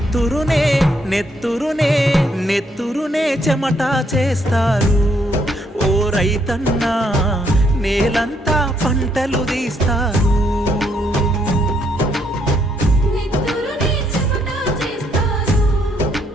నెత్తురునే నెత్తురునే చెమట చేస్తారు ఓ రైతన్నా నేలంతా పంటలు తీస్తారు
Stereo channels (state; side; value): normal; both; correlation 0.72